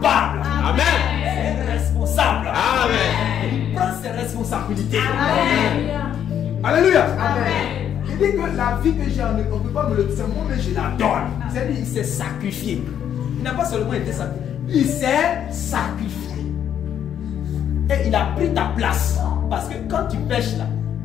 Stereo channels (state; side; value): quieter; right; 9.5 dB